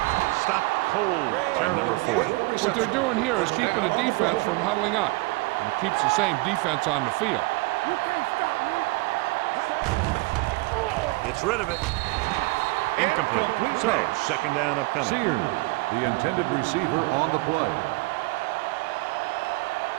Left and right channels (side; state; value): left; quieter; 24.3 dB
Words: Stopped cold by number 40. What they're doing here is keeping the defense from huddling up. And it keeps the same defense on the field. Gets rid of it. Incomplete. So, 2nd down upcoming. Sears, the intended receiver on the play.